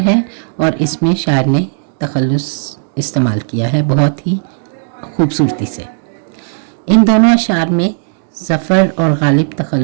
है और इसमें शायर ने तखल्लुस इस्तेमाल किया है बहुत ही खूबसूरती से। इन दोनों अशार में ज़फ़र और गालिब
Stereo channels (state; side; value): silent; left; digital silence